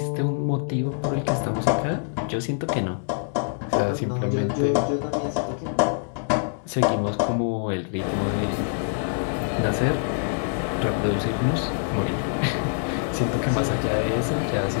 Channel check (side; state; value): right; silent; digital silence